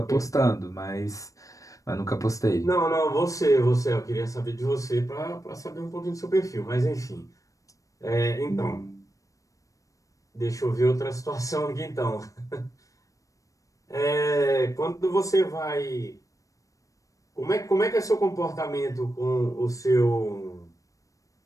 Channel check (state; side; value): late; right; 0.16 ms